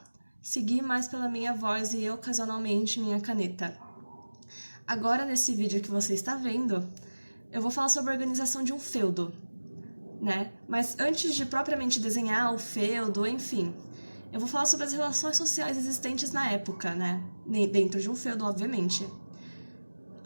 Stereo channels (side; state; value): both; inverted; correlation -1.00